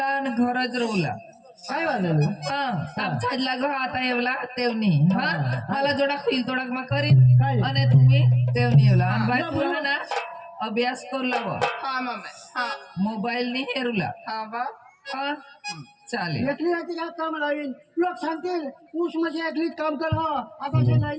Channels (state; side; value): identical; both; correlation 1.00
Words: आणि घरच रोवला काय वाजलं आमच्या घर आता एवला तेवनी हा मला जोडा खिल तोडा मग करीन आणि तुम्ही तेवनी एवला आणि बाई तुला ना अभ्यास करला मोबाईल नी हेरूला चालेल एकली राहते काय काम लावीन लोक सांगतील ऊस म्हणजे एकलीच काम कर हो आता ते